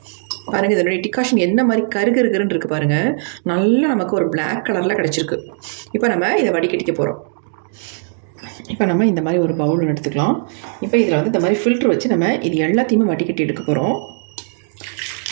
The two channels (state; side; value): silent; left; 67 dB below the other